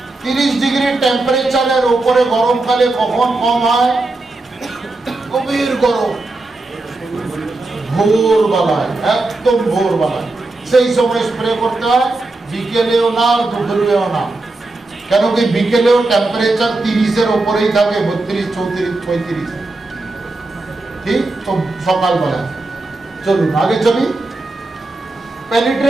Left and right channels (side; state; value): left; quieter; 3.0 dB